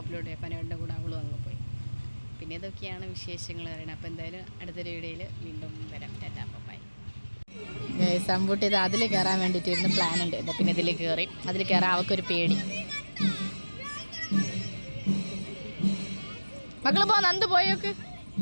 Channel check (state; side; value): inverted; both; correlation -1.00